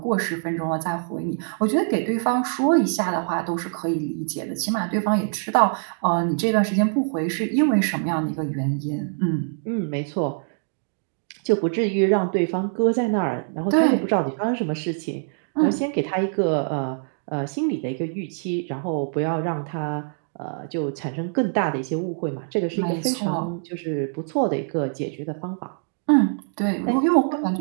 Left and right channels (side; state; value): left; silent; digital silence